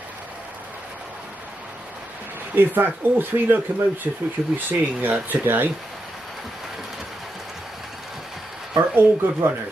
In fact, all three locomotives which you'll be seeing today are all good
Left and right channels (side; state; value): both; normal; correlation 0.86